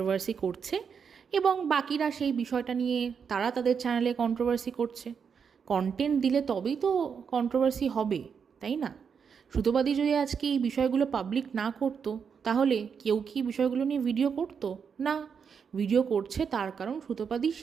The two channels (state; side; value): quieter; left; 6.6 dB